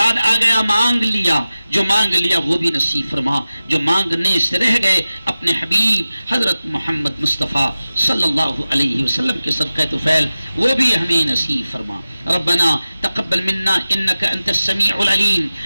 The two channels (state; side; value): inverted; both; correlation -0.95